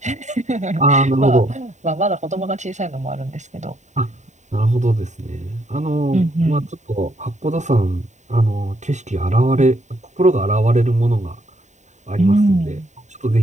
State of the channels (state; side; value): late; left; 0.34 ms